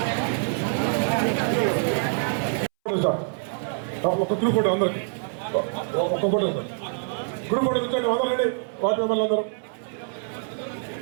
ఒక గ్రూప్ ఫోటో అందరికి ఒక్క ఫోటో గ్రూప్ ఫోటో కూర్చోండి అందరండి వార్డు మెంబర్లు అందరూ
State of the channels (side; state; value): left; silent; 62 dB below the other